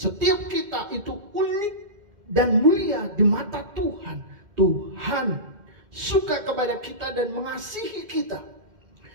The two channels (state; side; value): late; left; 2.1 ms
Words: kita itu unik dan mulia di mata Tuhan. Tuhan suka kepada kita dan mengasihi kita,